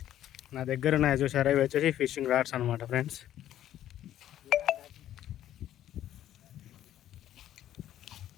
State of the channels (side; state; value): right; quieter; 12.0 dB